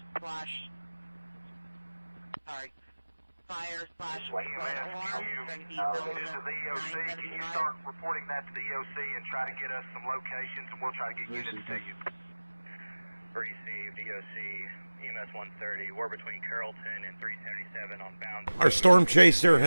slash flood alarm. This is the EOC. Can you start reporting that to the EOC and try to get us some locations, and we'll try to get units to you. Received, EOC, EMS 130. We're between Carrollton and 377 on Bounds. Our storm chaser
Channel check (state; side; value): inverted; both; correlation -1.00